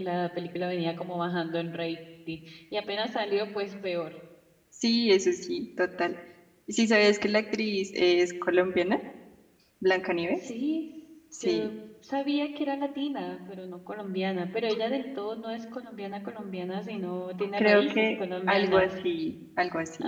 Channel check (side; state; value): both; identical; correlation 1.00